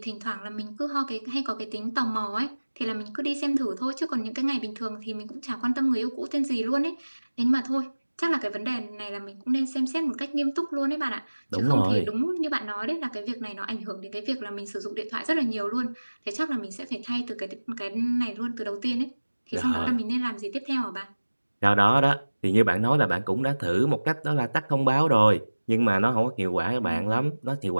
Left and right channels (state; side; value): inverted; both; correlation -1.00